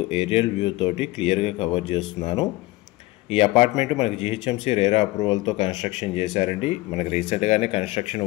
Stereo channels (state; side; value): quieter; right; 19.6 dB